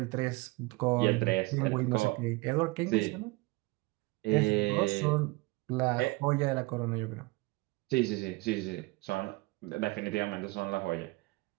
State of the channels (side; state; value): left; quieter; 23.4 dB